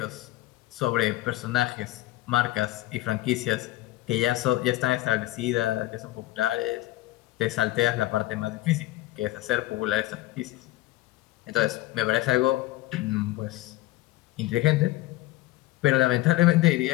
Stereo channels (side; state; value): right; quieter; 17.3 dB